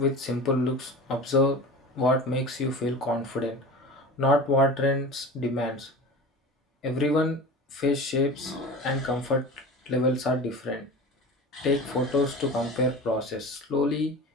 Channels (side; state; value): both; normal; correlation 0.34